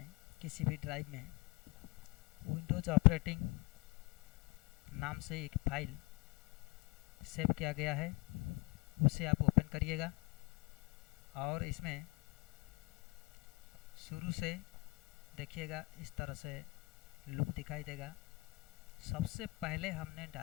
किसी भी ड्राइव में विंडोज़ ऑपरेटिंग नाम से एक फाइल सेव किया गया है, उसे आप ओपन करिएगा और इसमें शुरू से देखिएगा इस तरह से लुक दिखाई देगा। सबसे पहले हमने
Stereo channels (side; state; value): right; quieter; 25.8 dB